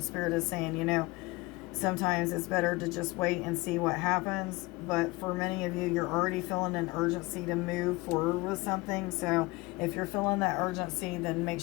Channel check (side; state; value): right; quieter; 22.8 dB